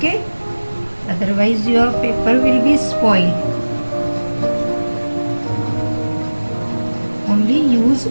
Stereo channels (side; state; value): both; inverted; correlation -1.00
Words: Otherwise your paper will be spoiled. Only use